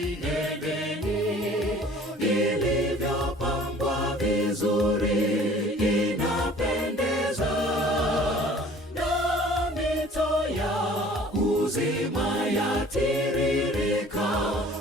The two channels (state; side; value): normal; both; correlation 0.50